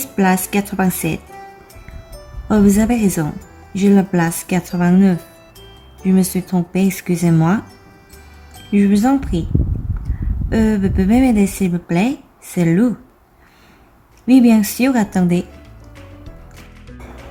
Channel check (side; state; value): both; identical; correlation 1.00